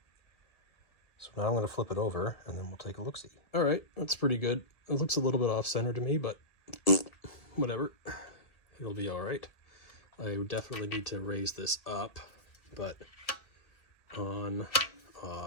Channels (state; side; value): late; right; 2.1 ms